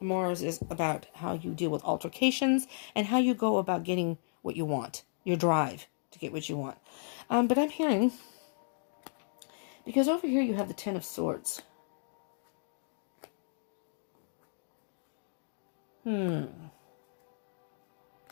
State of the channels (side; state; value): right; silent; digital silence